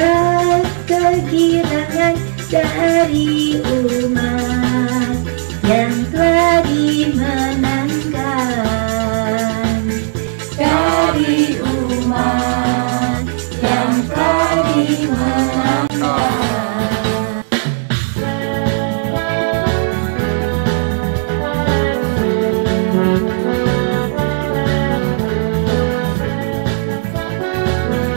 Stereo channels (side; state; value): left; silent; digital silence